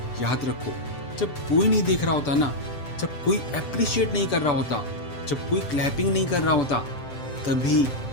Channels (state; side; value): late; right; 7.8 ms